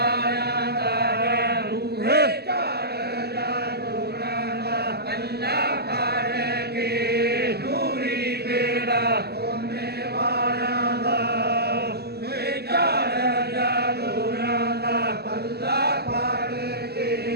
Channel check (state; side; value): late; left; 0.47 ms